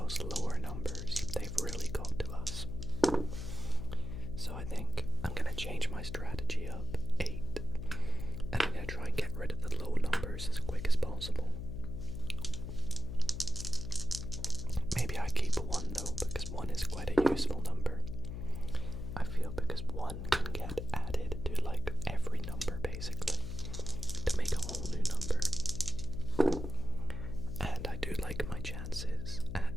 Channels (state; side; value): noise; left; hum, 6 dB below the sound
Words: lower numbers. They've really got to us. So I think I'm going to change my strategy up 8, and I'm going to try and get rid of the low numbers as quick as possible. Maybe I keep 1 though, because 1 is quite a useful number. I feel because 1 can get added